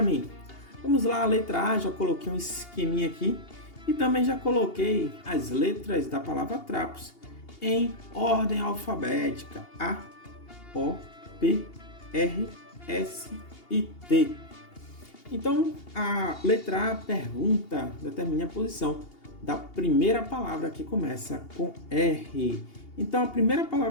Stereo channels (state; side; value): late; right; 2.8 ms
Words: mim. Vamos lá, a letra A, já coloquei um esqueminha aqui. E também já coloquei as letras da palavra trapos em ordem alfabética. A, O, P, R, S e T. Então, a letra A pergunta, determine a posição da primeira palavra que começa com R. Então, a primeira